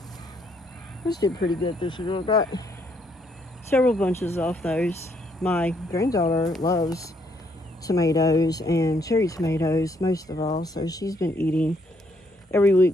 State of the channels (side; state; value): both; normal; correlation 0.71